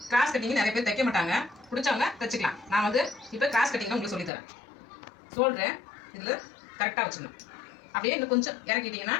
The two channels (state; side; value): drops out; right; at 4.3 s